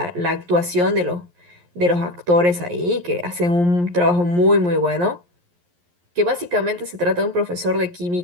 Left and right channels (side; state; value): left; late; 11 ms